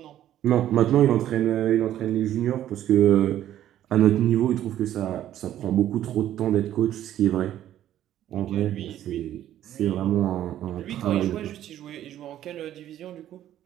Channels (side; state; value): left; quieter; 12.0 dB